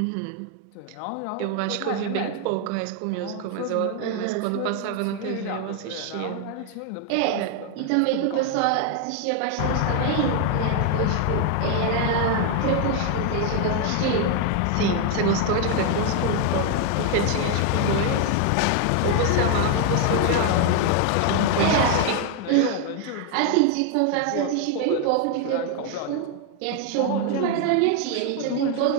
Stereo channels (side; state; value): both; different; correlation 0.01